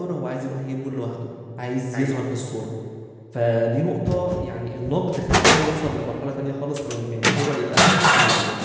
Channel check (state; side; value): identical; both; correlation 1.00